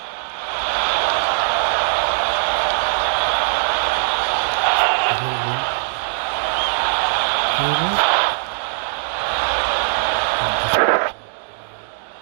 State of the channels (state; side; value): silent; left; digital silence